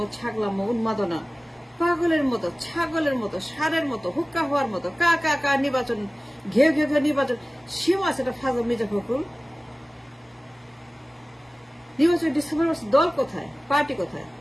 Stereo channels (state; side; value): normal; both; correlation 0.97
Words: ছাগলামো উন্মাদনা, পাগলের মতো, ছাগলের মতো, ষাঁড়ের মতো, হুক্কা হওয়ার মতো, কা কা কা নির্বাচন, ঘেউ ঘেউ ঘেউ নির্বাচন। সীমা আছে এটা ফাজল মির্জা ফখরুল। নির্বাচন ডিসেম্বর মাসে দল কোথায়, পার্টি কোথায়?